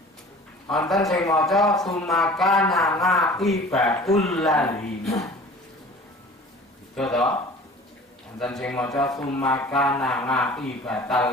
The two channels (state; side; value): normal; both; correlation 0.44